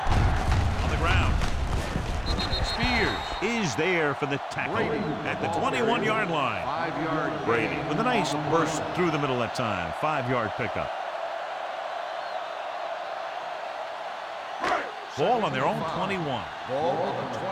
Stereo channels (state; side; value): identical; both; correlation 1.00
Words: On the ground. Spears is there for the tackle at the 21-yard line. 5-yard Brady with a nice burst through the middle that time. 5-yard pickup. Ball on their own 21. Ball on the